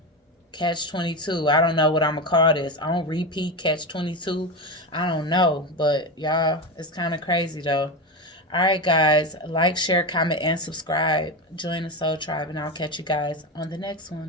Catch 22. I don't know what I'm going to call this. I don't repeat catch 22. I don't know. But y'all, it's kind of crazy though. All right, guys. Like, share, comment, and subscribe. Join the Soul Tribe, and I'll catch you guys on the next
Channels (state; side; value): normal; both; correlation 0.18